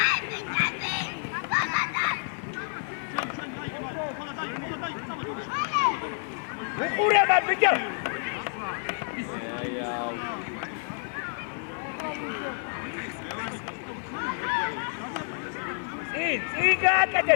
უყურება ბიჭო. წინ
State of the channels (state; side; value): silent; right; 59 dB below the other